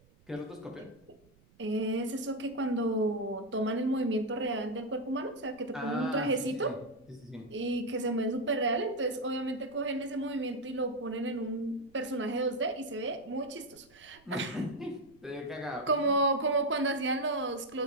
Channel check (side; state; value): right; noise; rumble, 29 dB below the sound